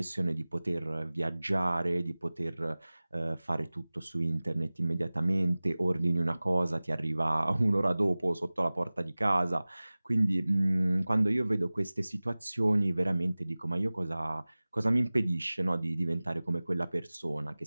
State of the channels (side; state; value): both; inverted; correlation -0.99